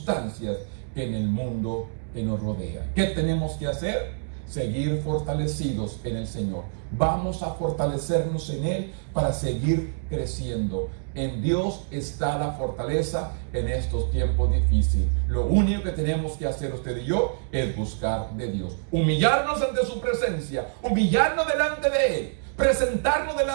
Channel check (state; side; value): silent; left; digital silence